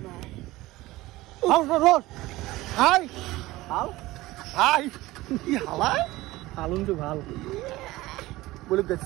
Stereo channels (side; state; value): left; quieter; 18.5 dB